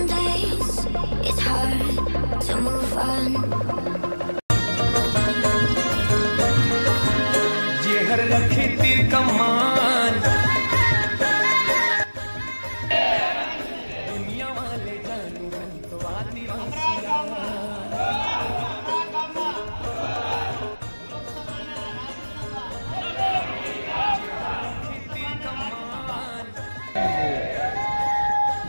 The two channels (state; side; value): inverted; both; correlation -1.00